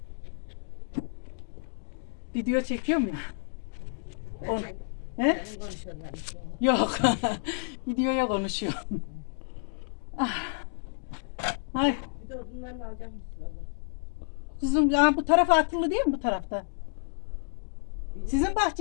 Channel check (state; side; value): silent; right; digital silence